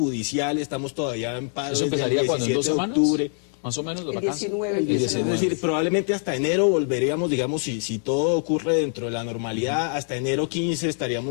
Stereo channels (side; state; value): right; silent; 56 dB below the other